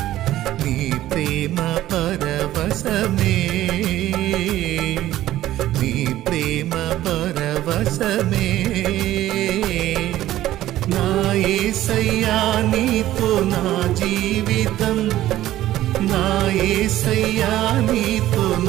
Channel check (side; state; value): left; quieter; 14.2 dB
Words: నీ ప్రేమ పరవశమే, నీ ప్రేమ పరవశమే. నా యేసయ్యా నీతో నా జీవితం, నా యేసయ్యా నీతో